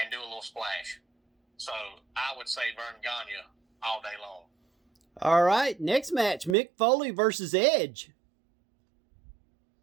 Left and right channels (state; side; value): drops out; left; at 6.6 s